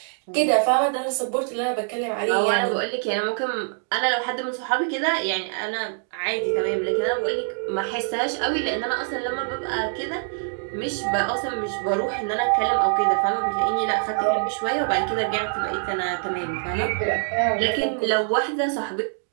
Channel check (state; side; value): silent; left; 59 dB below the other